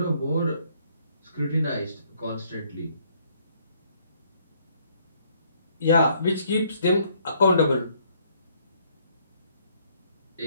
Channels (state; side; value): inverted; both; correlation -0.66